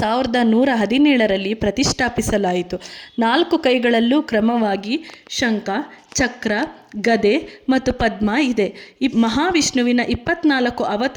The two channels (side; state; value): both; identical; correlation 1.00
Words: 1117ರಲ್ಲಿ ಪ್ರತಿಷ್ಠಾಪಿಸಲಾಯಿತು. 4 ಕೈಗಳಲ್ಲೂ ಕ್ರಮವಾಗಿ ಶಂಖ, ಚಕ್ರ, ಗದೆ ಮತ್ತು ಪದ್ಮ ಇದೆ. ಈ ಮಹಾವಿಷ್ಣುವಿನ 24